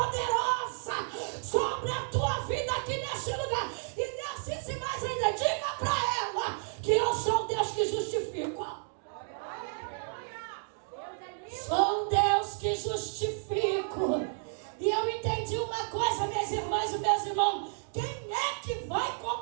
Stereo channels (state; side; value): silent; left; digital silence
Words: sobre a tua vida aqui neste lugar. E Deus disse mais ainda: diga para ela que eu sou Deus que justifica. Sou Deus que justifico. E eu entendi uma coisa, minhas irmãs e meus irmãos: quem é que vai